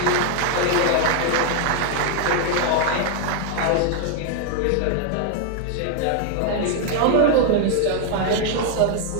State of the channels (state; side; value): different; both; correlation 0.00